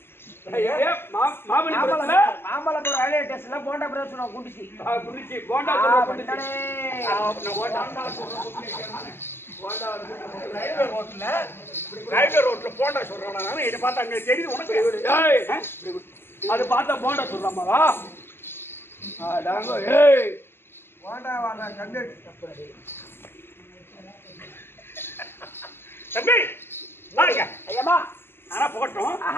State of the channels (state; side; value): late; right; 0.11 ms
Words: மாமல்லபுரம் ரயில்வே ஸ்டேஷன்ல போண்டா பிரச்சனை குடிச்சு போண்டா ரயில்வே ரோட்ல போண்டா சொல்றாங்க. இதை பார்த்தா அங்க தெரியுது உனக்கு. அது பார்த்தா போண்டா சொல்றாமாவா? தம்பி பாருங்க ஐயம்மா ஆனா போட்டோம்.